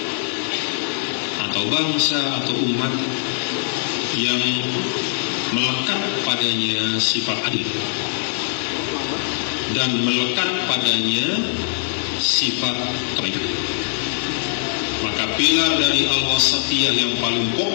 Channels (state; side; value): silent; right; 56 dB below the other